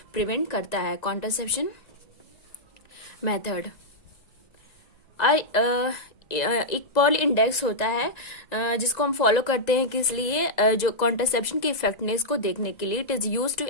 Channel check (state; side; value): late; right; 1.9 ms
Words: प्रिवेंट करता है। कॉन्ट्रासेप्शन मेथड एक पर्ल इंडेक्स होता है जिसको हम फॉलो करते हैं किस लिए, जो कॉन्ट्रासेप्शन की इफेक्टनेस को देखने के लिए। It is use to